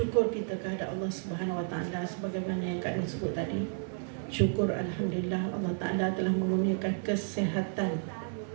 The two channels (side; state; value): left; silent; digital silence